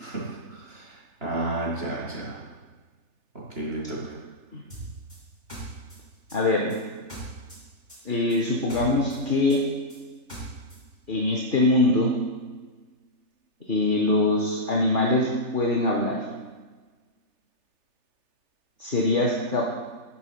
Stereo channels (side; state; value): left; late; 3.4 ms